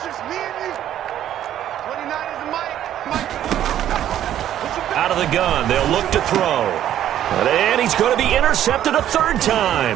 Out of the gun, they'll look to throw. And he's going to be intercepted a 3rd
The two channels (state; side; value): quieter; left; 11.3 dB